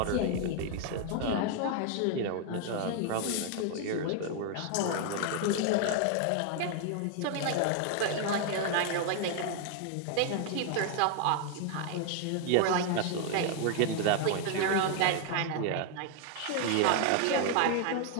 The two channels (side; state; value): both; different; correlation 0.00